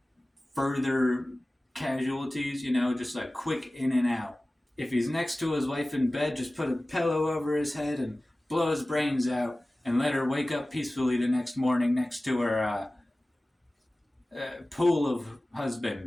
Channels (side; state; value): both; normal; correlation 0.97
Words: further casualties, just like quick in and out. If he's next to his wife in bed, just put a pillow over his head and blow his brains out and let her wake up peacefully the next morning next to her pool of